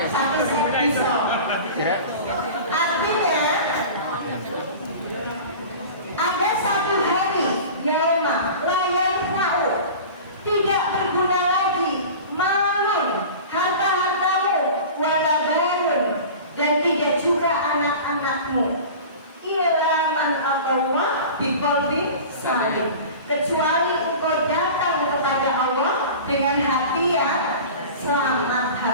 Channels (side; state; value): both; inverted; correlation -0.36